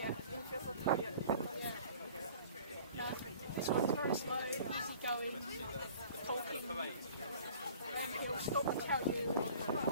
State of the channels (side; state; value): both; inverted; correlation -0.48